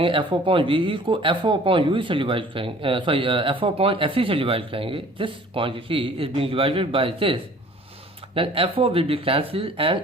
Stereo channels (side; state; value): both; normal; correlation 0.50